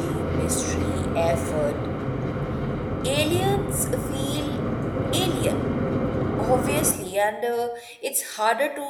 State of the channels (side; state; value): both; identical; correlation 1.00